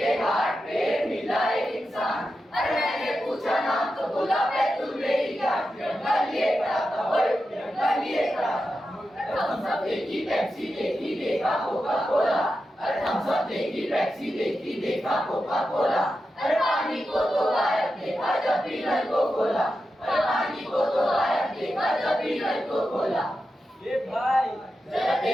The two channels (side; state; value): both; normal; correlation 0.90